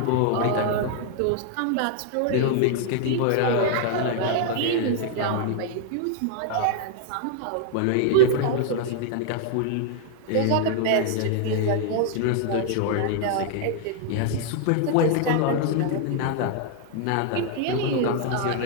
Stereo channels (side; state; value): both; different; correlation 0.00